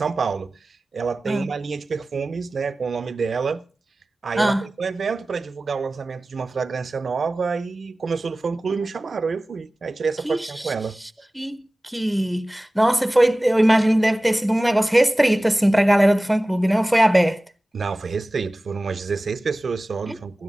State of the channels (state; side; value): normal; both; correlation 0.97